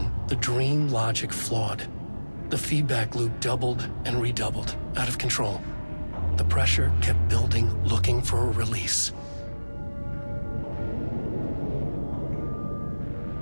the dream logic flawed. The feedback loop doubled and redoubled, out of control. The pressure kept building, looking for a release.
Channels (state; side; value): inverted; both; correlation -1.00